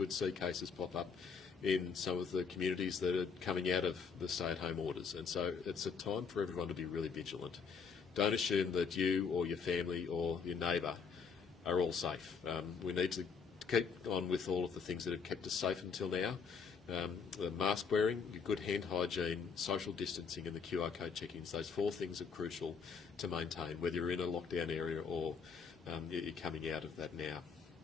see cases pop up in some of the communities that are coming out of the stay-at-home orders. And so it's a time for everyone to be really vigilant. Don't assume that you or your family or your neighbour are all safe. We need to keep on with all of the things that have kept us safe until now. The mask wearing, good hand hygiene, social distancing and the QR code check-ins, those four things are crucial to maintain, whether you're in a lockdown area or you're coming out of that now.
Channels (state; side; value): quieter; right; 5.8 dB